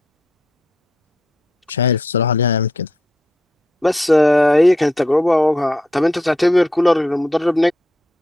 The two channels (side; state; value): both; normal; correlation 0.80